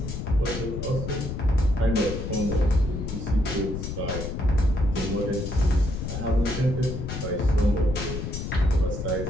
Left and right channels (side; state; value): left; noise; rumble, 5 dB below the sound